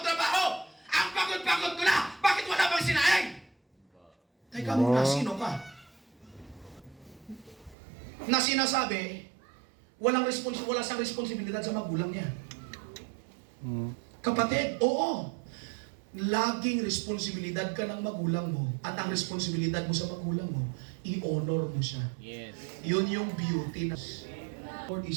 trabaho. Ang pagod-pagod ko na. Bakit wala pang sinaing? Teka muna, sino ka? Na sinasabi, wala sang responsibilidad sa magulang niya. Kapatid, oo. Laging responsibilidad ka ng magulang mo. At ang responsibilidad mo sa magulang mo, i-honor mo siya. Yes. Yun yung beauty na Lord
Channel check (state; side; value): drops out; left; at 7.8 s